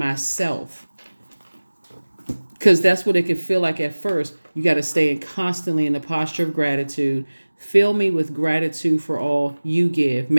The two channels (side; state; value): both; inverted; correlation -1.00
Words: because that's what it could feel like at first. You got to stay constantly in the posture of gratitude. Fill me with gratitude for all you give.